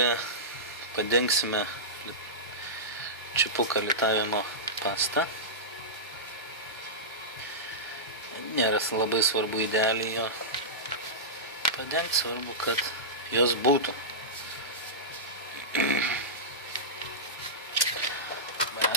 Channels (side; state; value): both; normal; correlation -0.15